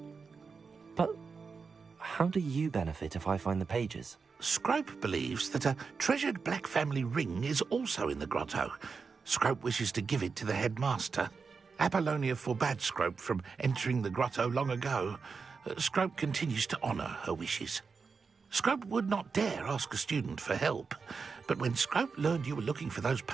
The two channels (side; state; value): left; quieter; 5.1 dB